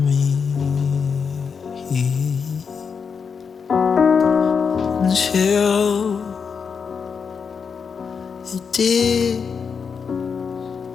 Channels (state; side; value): quieter; right; 6.1 dB